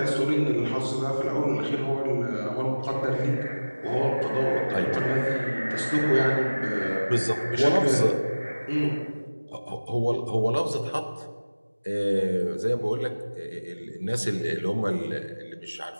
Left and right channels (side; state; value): both; inverted; correlation -1.00